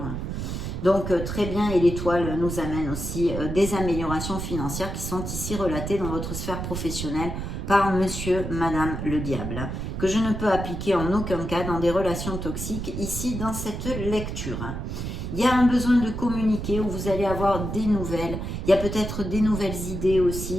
Donc, très bien, et l'étoile nous amène aussi des améliorations financières qui sont ici relatées dans votre sphère professionnelle par monsieur, madame le diable, que je ne peux appliquer en aucun cas dans des relations toxiques, ici, dans cette lecture. Il y a un besoin de communiquer où vous allez avoir des nouvelles. Il y a peut-être des nouvelles idées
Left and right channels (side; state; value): right; noise; rumble, 5 dB below the sound